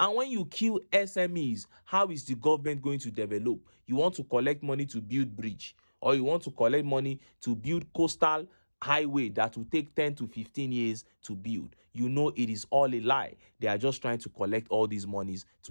when you kill SMEs, how is the government going to develop? You want to collect money to build bridge, or you want to collect money to build coastal highway that will take 10 to 15 years to build. You know it is all a lie. They are just trying to collect all these monies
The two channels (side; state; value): both; inverted; correlation -1.00